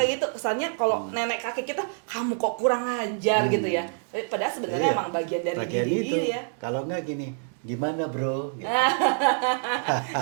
gitu. Kesannya kalau nenek kakek kita, kamu kok kurang ajar gitu ya. Padahal sebenarnya emang bagian dari diri itu. ya. Kalau enggak gini, gimana bro? Gitu.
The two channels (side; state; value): left; silent; 61 dB below the other